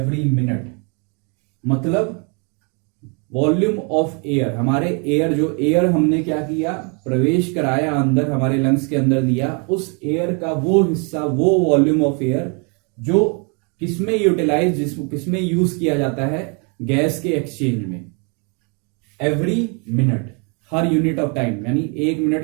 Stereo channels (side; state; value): left; quieter; 34.8 dB